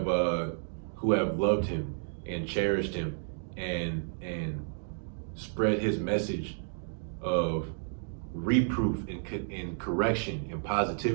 loved him and cherished him and spread his message of reproof and correction and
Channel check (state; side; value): silent; left; digital silence